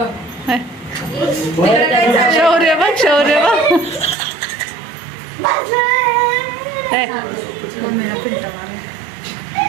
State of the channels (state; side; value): drops out; left; at 4.2 s